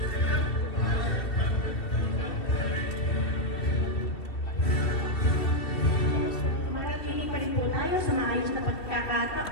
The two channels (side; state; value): right; late; 2.7 ms